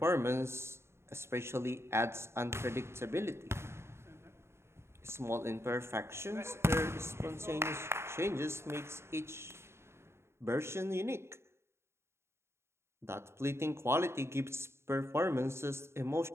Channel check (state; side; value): late; left; 0.13 ms